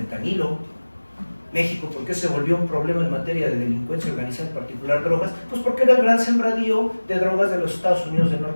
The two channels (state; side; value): inverted; both; correlation -1.00